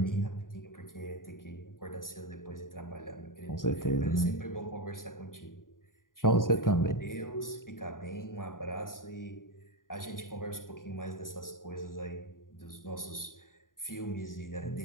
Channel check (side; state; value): right; late; 0.90 ms